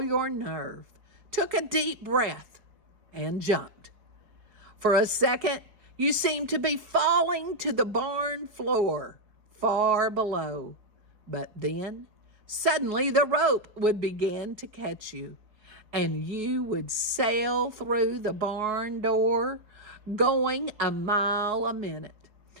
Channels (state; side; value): late; left; 4.7 ms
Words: your nerve, took a deep breath, and jumped. For a second, you seemed to be falling to the barn floor far below. But then, suddenly the rope would begin to catch you, and you would sail through the barn door, going a mile a minute,